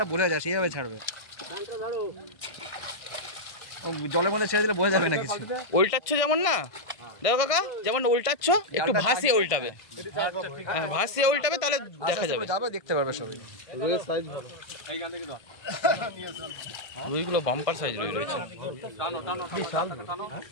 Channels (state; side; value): late; right; 1.5 ms